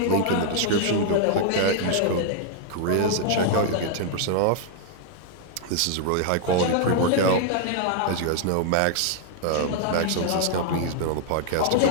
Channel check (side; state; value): both; different; correlation -0.01